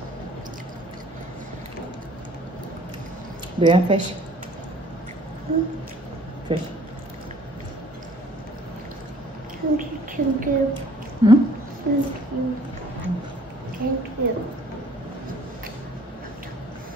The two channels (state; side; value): normal; both; correlation 0.55